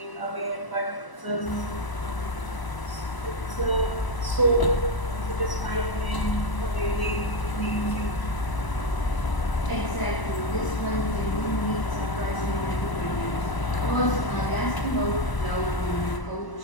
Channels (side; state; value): right; late; 1.0 ms